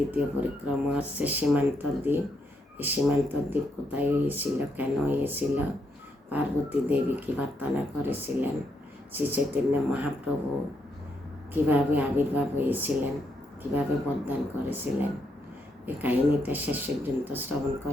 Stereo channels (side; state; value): both; normal; correlation 0.78